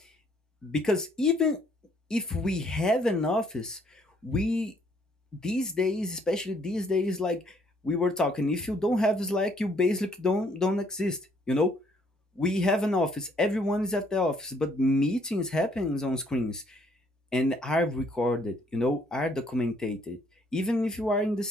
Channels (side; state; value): both; normal; correlation 0.66